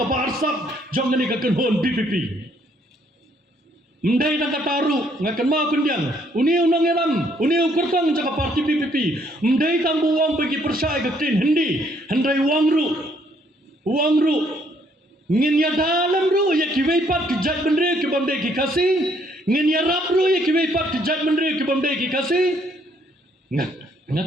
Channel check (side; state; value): both; normal; correlation 0.67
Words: parsap jong ni ka kenhon BPP mendai na kataru ngakan ma kundiang uni unang elam uni ukurtang jaka parti BPP mendai tambu wang bagi persai ka tin hindi handai wang ru ngin ya dalam ru ya kiwei pat ki jat bendre ki bamde ki kasi ngin ya rap ru ya kiwei pat ki jat bendre ki bamde ki kasi